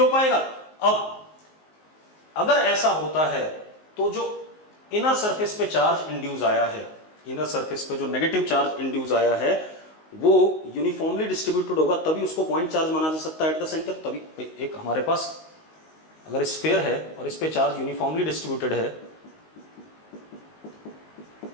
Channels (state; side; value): late; right; 19 ms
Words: पाएगा। अब अगर ऐसा होता है तो जो इनर सरफेस पे चार्ज इंड्यूस आया है, इनर सरफेस पे जो नेगेटिव चार्ज इंड्यूस आया है वो यूनिफॉर्मली डिस्ट्रीब्यूटेड होगा, तभी उसको पॉइंट चार्ज माना जा सकता है एट द सेंटर। तभी एक हमारे पास अगर स्फीयर है और इस पे चार्ज यूनिफॉर्मली डिस्ट्रीब्यूटेड है